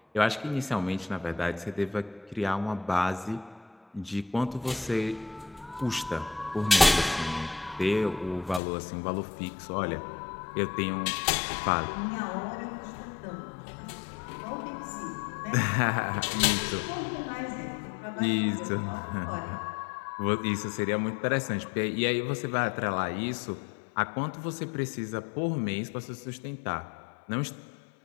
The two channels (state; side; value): drops out; right; at 8.6 s